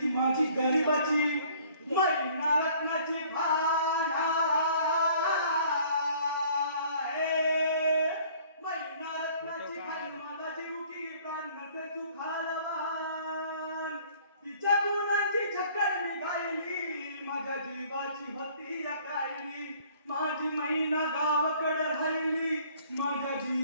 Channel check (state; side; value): inverted; both; correlation -0.56